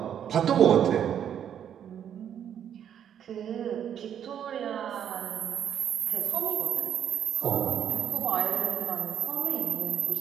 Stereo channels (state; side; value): quieter; left; 9.3 dB